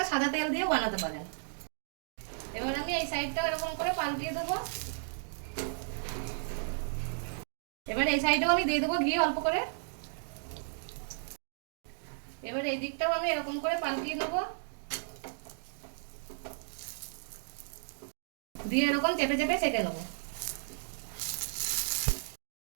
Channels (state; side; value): silent; left; digital silence